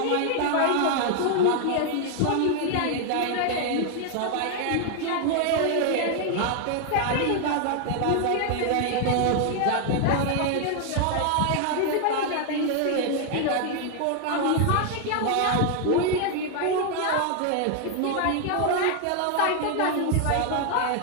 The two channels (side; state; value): both; different; correlation 0.00